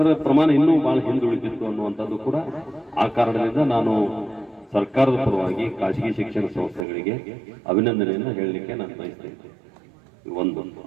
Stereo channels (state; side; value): drops out; left; at 6.9 s